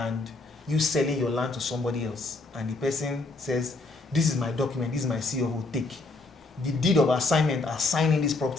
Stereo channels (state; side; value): quieter; right; 3.4 dB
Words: you selling your land to somebody else, and the person says, this is my document, this is my C of O, take. The deed of assignment assigning this